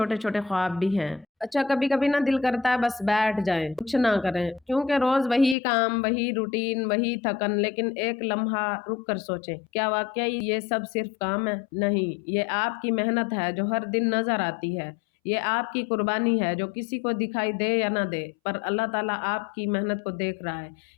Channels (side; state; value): right; drops out; at 5.6 s